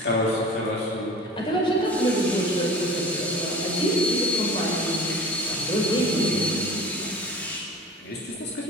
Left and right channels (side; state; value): both; normal; correlation 0.40